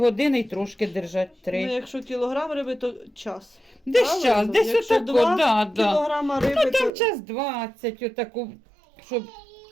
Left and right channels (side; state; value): left; drops out; at 6.9 s